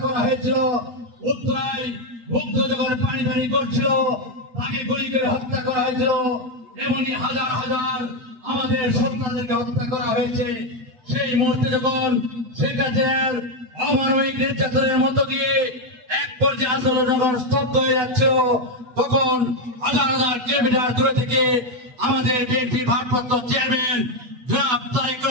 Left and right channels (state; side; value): late; left; 8.3 ms